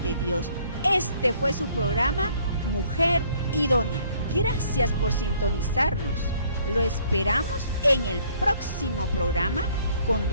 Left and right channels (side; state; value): both; inverted; correlation -0.61